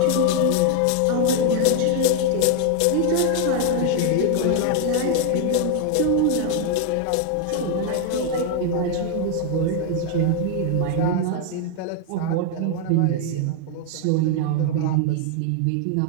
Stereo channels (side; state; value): both; different; correlation 0.00